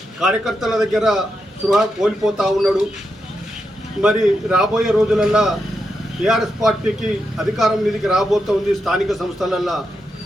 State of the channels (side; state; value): both; normal; correlation 0.85